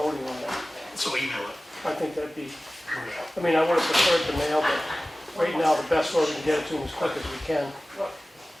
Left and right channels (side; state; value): both; normal; correlation 0.97